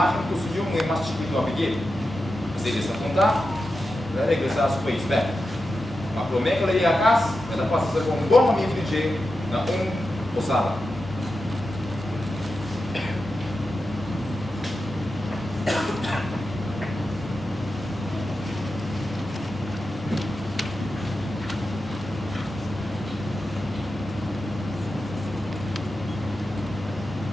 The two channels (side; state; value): both; normal; correlation 0.90